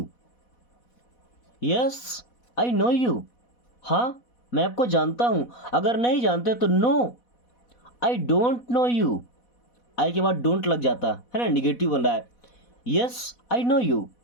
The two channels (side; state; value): right; late; 4.1 ms